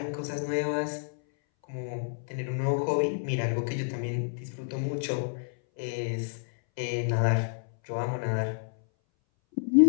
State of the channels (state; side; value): silent; right; 58 dB below the other